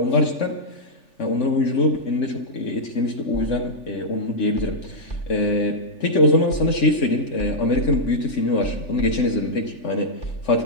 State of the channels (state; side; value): late; right; 3.4 ms